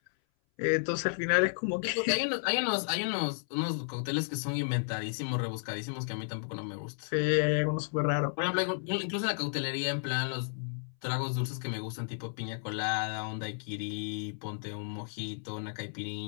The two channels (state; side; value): silent; right; 56 dB below the other